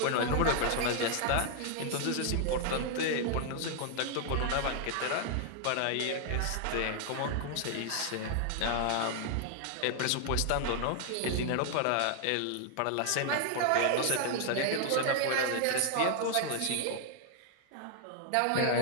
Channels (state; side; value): different; both; correlation 0.00